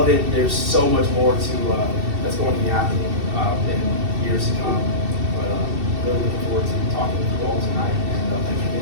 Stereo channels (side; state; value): left; late; 2.7 ms